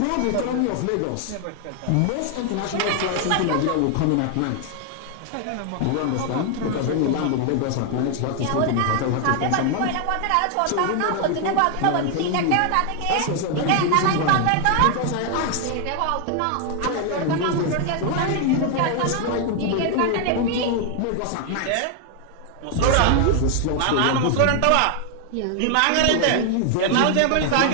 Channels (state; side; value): different; both; correlation 0.00